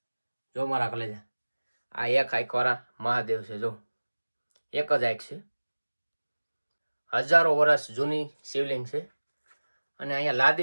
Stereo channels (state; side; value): inverted; both; correlation -1.00